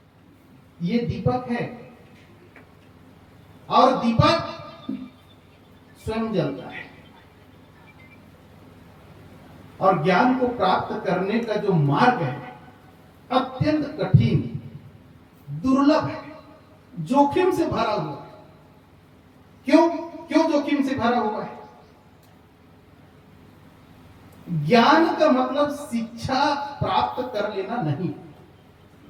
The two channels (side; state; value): both; identical; correlation 1.00